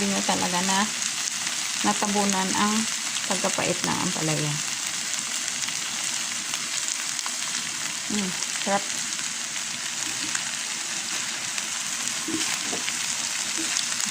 nyo talaga na natabunan ang pagkapait ng ampalaya. Sarap.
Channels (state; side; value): identical; both; correlation 1.00